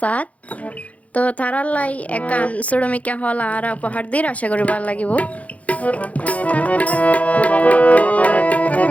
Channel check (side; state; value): right; late; 0.067 ms